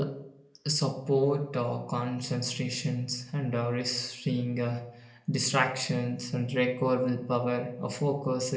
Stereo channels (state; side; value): identical; both; correlation 1.00